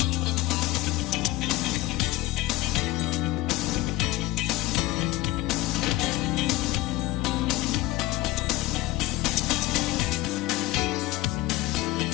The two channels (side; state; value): right; quieter; 17.5 dB